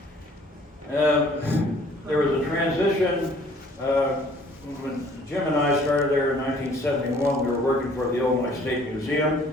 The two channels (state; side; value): normal; both; correlation 0.56